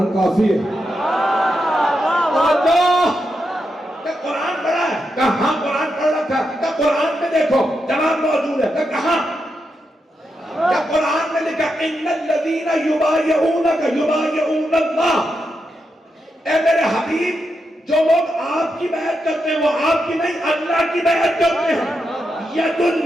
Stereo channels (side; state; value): both; normal; correlation 0.85